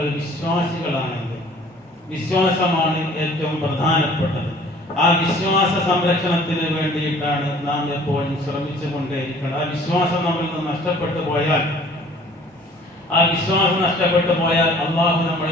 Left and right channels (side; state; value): both; normal; correlation 0.52